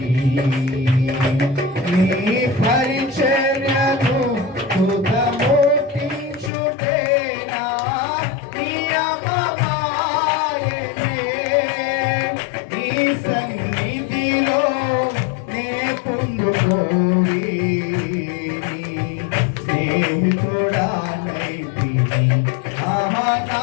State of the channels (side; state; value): right; drops out; at 6.5 s